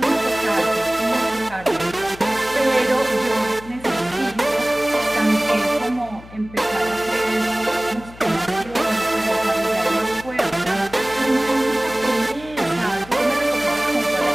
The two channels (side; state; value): left; noise; hum, 19 dB below the sound